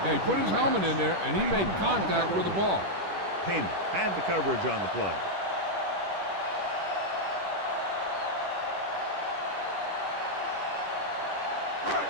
Yeah, he put his helmet in there, and he made contact with the ball. Heyman had the coverage on the play.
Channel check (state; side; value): late; left; 10 ms